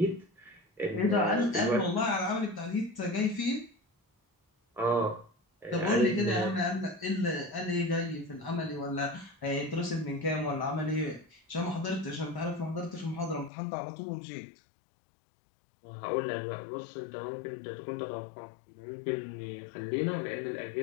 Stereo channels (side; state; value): right; drops out; at 13.5 s